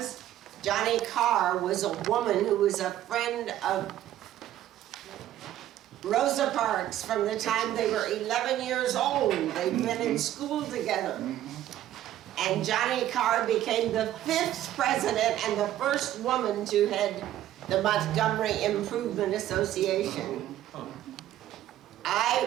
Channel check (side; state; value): left; quieter; 12.9 dB